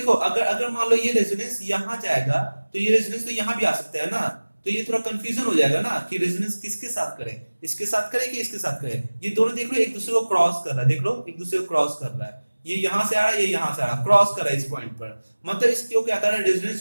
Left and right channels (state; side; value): inverted; both; correlation -1.00